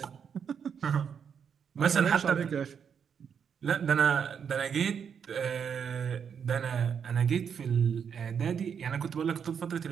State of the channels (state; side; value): quieter; left; 7.3 dB